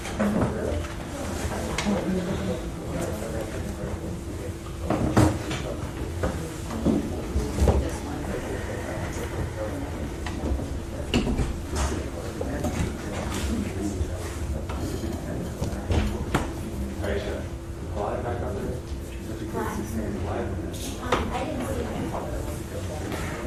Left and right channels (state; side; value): identical; both; correlation 1.00